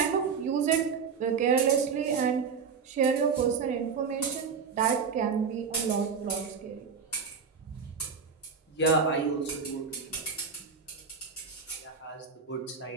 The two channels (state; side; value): quieter; left; 5.9 dB